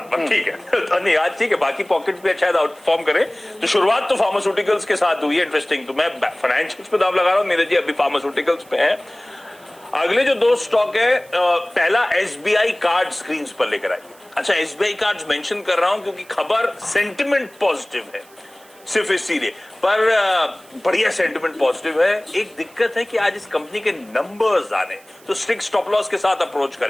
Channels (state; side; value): noise; right; hiss, 26 dB below the sound